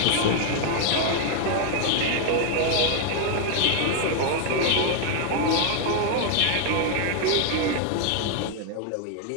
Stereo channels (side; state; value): both; different; correlation 0.01